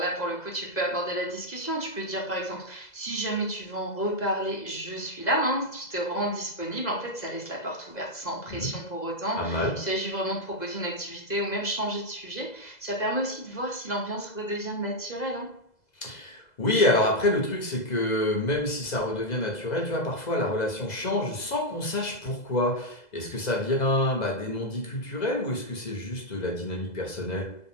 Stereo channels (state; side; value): late; right; 2.0 ms